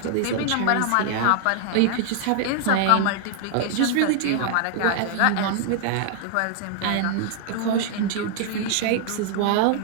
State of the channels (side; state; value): both; different; correlation 0.00